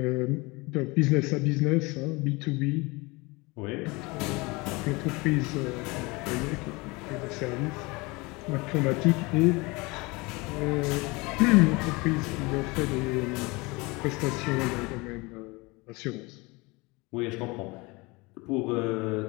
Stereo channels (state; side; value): quieter; right; 25.0 dB